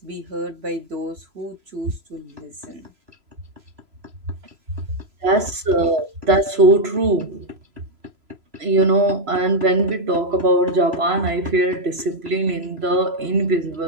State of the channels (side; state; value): left; late; 3.0 ms